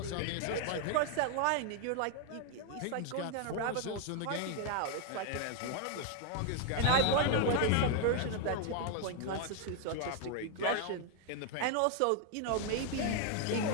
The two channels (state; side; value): different; both; correlation 0.00